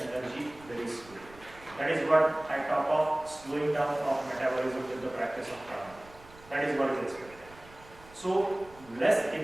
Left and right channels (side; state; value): right; noise; rumble, 22 dB below the sound